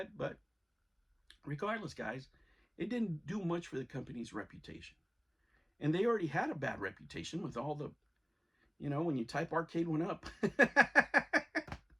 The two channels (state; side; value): identical; both; correlation 1.00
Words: but regardless, guys, it didn't do much for the company's reputation. And they already had a bad reputation with all the, when you type arcade one up,